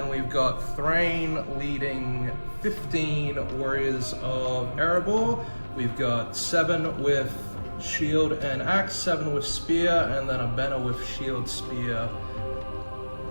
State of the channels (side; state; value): both; inverted; correlation -1.00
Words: we've got Thrain leading 15 warriors of Erebor. We've got 7 with shield and axe, 7 with spear, and then a banner with shield, spear